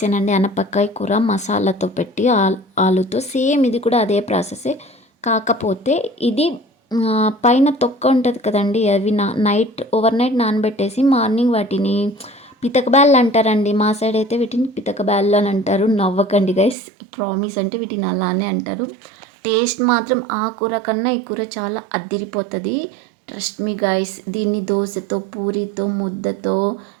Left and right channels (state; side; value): drops out; left; at 16.8 s